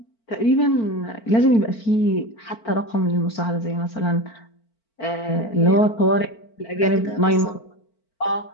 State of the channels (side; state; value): right; late; 4.5 ms